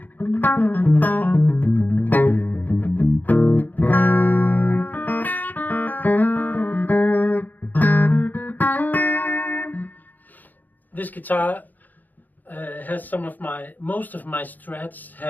This guitar has most of my Strats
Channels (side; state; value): right; late; 0.084 ms